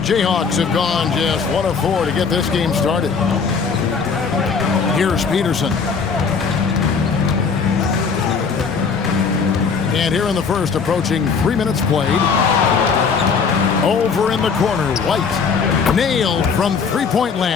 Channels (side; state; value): right; quieter; 5.6 dB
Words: have gone just 1 of 4 to get this game started. Here's Peterson. And here in the first, approaching 3 minutes played. Over in the corner, White. Nailed from three-point